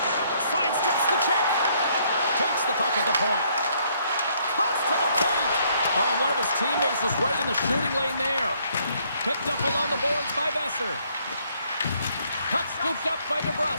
Sidesteps the check. Takes the puck at the point. Cuts to the paint. Oh, one of his teammates was right in the shooting lane there. Picked up along the boards by Besser. Puck scooped up by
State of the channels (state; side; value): inverted; both; correlation -0.67